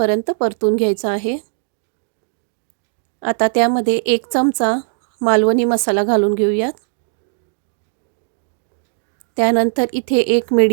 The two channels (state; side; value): silent; left; digital silence